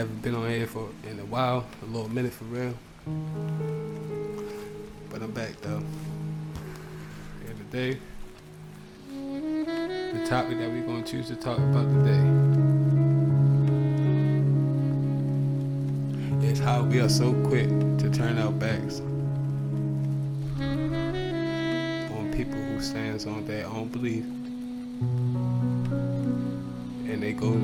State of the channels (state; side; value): identical; both; correlation 1.00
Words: been on air in a while, a little minute for real. But I'm back though. And today, the topic that we're going to choose to talk about today is how we are so quick to turn our backs on people who stands on their own belief, and they go